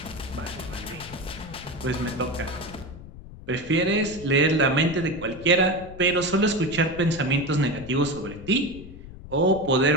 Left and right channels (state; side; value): noise; left; rumble, 15 dB below the sound